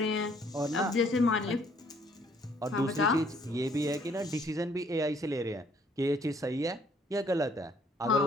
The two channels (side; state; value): both; normal; correlation 0.63